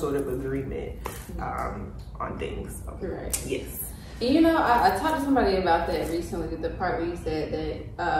of agreement on things. So, right. Yes. And I talked to somebody about that recently, the part where you said that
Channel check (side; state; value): both; identical; correlation 1.00